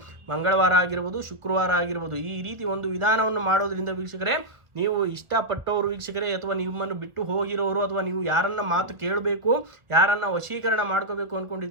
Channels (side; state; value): left; late; 1.2 ms